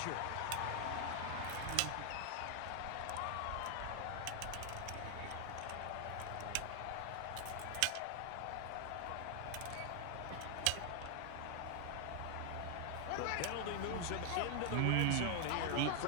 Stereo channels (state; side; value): different; both; correlation 0.00